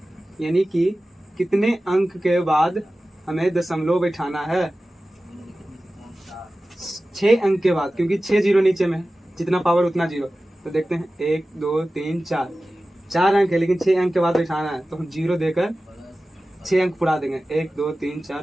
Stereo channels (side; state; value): both; normal; correlation 0.95